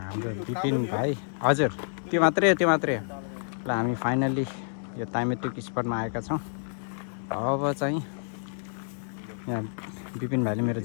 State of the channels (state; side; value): silent; right; digital silence